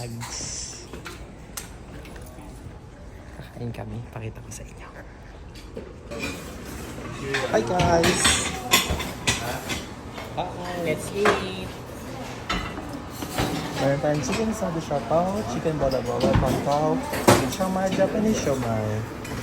Kakain kami, pakita ko sa inyo. Hi guys! Let's eat! Meron tayong chicken sado siopao, chicken bola-bola, pangkaw, chicken siomai, Japanese siomai.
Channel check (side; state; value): both; identical; correlation 1.00